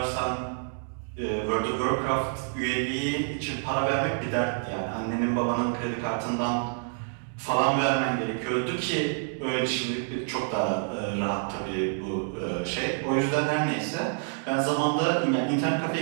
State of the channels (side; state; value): left; silent; 57 dB below the other